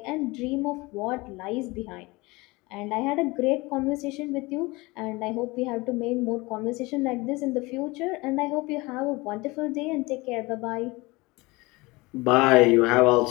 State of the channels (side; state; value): right; quieter; 23.3 dB